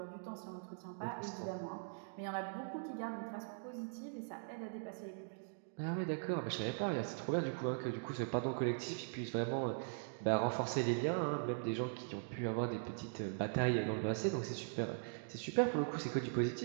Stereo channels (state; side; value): silent; left; digital silence